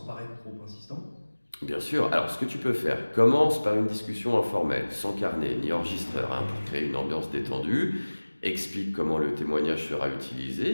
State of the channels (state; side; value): inverted; both; correlation -1.00